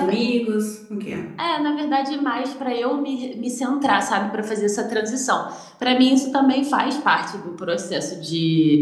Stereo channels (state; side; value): identical; both; correlation 1.00